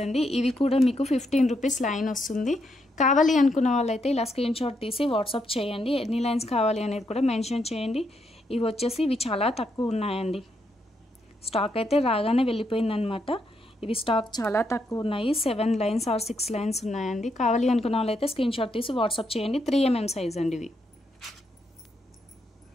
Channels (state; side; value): normal; both; correlation 0.79